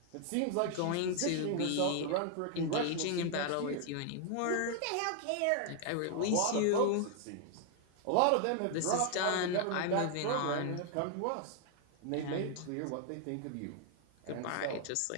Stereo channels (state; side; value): different; both; correlation 0.00